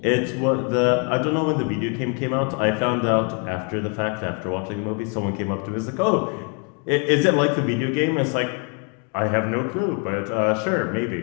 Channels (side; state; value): right; quieter; 38.3 dB